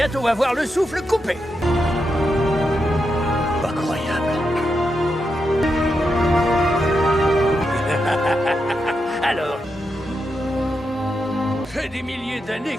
avoir le souffle coupé. Incroyable. Alors... Fait des milliers d'années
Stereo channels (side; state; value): both; normal; correlation 0.85